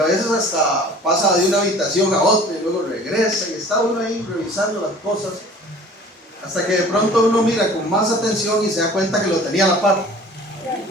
veces hasta pasa de una habitación a otra y luego regresa y está uno ahí revisando las cosas hasta que de pronto uno mira con más atención y se da cuenta que lo tenía a la par,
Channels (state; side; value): normal; both; correlation 0.46